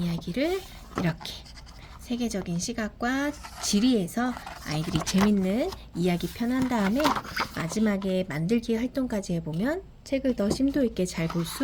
이렇게 세계적인 시각과 지리에서 아이들이 재밌는 이야기 편한 다음에 마지막에 만들기 활동까지 해보면 책을 더 심도 있게 잘 볼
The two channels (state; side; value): identical; both; correlation 1.00